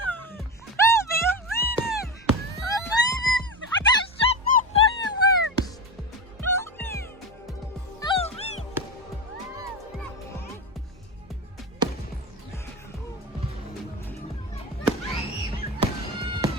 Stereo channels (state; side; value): normal; both; correlation 0.19